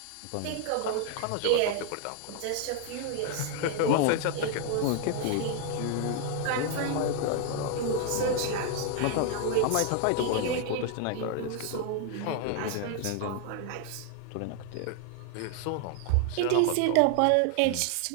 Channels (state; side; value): different; both; correlation 0.00